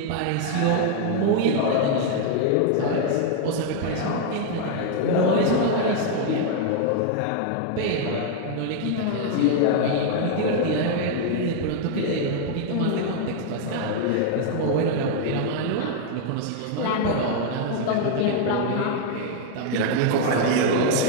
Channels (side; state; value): both; different; correlation 0.00